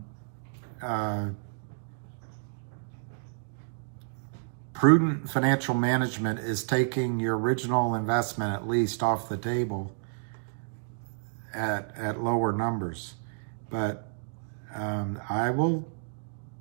Prudent financial management is taking your original investment at least off the table at lower numbers. But I will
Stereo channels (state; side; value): silent; left; digital silence